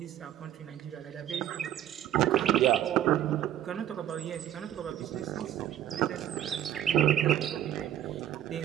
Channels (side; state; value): left; quieter; 11.4 dB